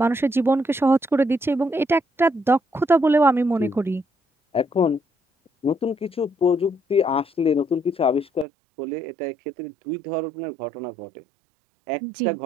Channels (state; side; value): drops out; left; at 8.5 s